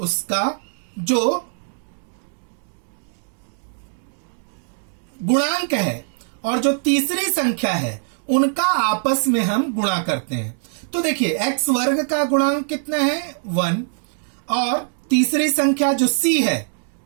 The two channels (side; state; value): left; silent; digital silence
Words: जो गुणांक है और जो तीसरी संख्या है उनका आपस में हम गुणा करते हैं। तो देखिए, x वर्ग का गुणांक कितना है 1, और तीसरी संख्या जो c है,